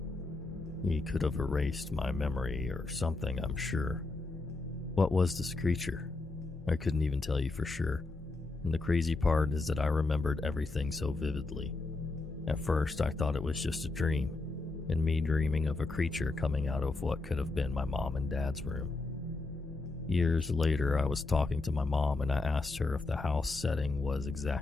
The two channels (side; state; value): right; quieter; 3.3 dB